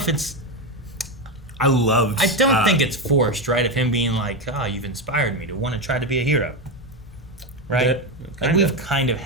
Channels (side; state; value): both; normal; correlation 0.12